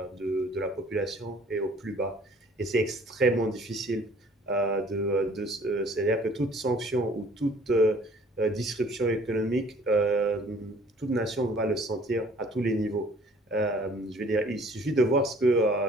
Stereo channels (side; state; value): both; normal; correlation 0.55